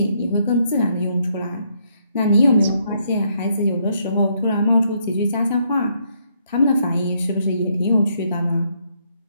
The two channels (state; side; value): inverted; both; correlation -0.73